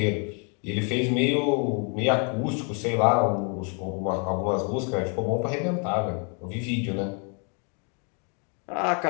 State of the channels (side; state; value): right; quieter; 38.1 dB